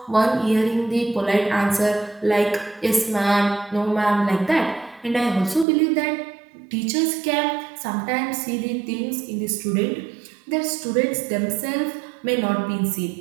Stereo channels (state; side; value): drops out; left; at 5.7 s